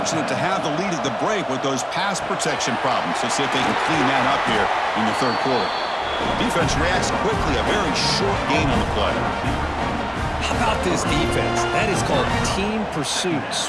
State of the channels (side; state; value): both; identical; correlation 1.00